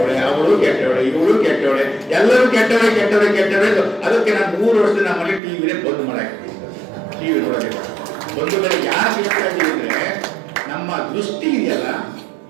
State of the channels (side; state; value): left; drops out; at 5.4 s